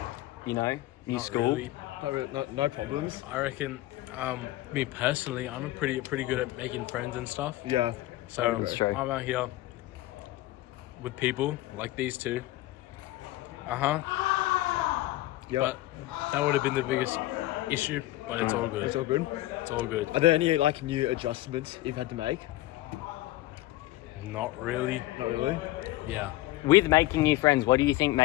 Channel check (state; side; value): quieter; right; 16.9 dB